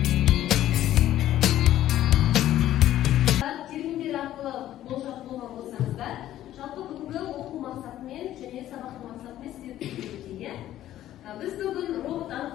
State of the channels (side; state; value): right; quieter; 13.0 dB